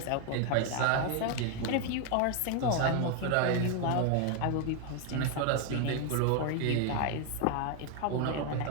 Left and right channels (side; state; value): both; different; correlation 0.01